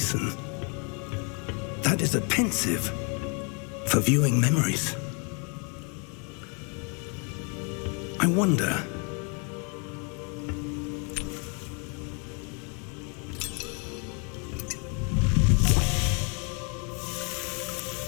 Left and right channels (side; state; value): right; quieter; 36.0 dB